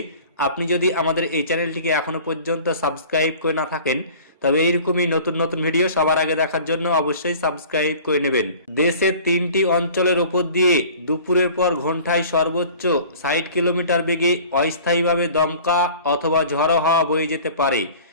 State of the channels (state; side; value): inverted; both; correlation -0.45